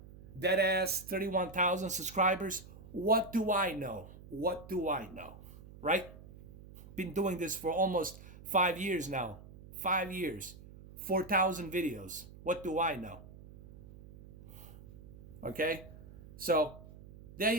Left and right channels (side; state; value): right; noise; hum, 18 dB below the sound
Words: 31,000 subscribers. What do I know? What do I know? Right? Been doing this for almost 5 years now. 5 years. 4,000 videos. What do I know? Okay? So, there